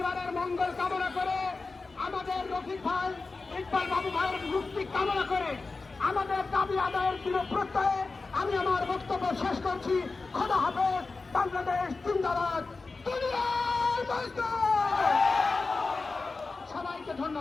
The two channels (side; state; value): right; quieter; 3.9 dB